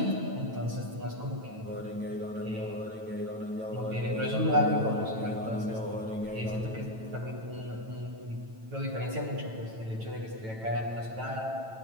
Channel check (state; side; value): late; left; 9.0 ms